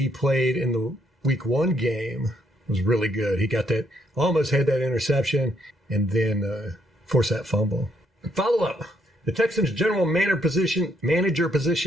played in the week 1 game was really good. He got that, almost had that interception, and then forced that fumble. Follow up. The Texans' general manager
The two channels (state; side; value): normal; both; correlation 0.73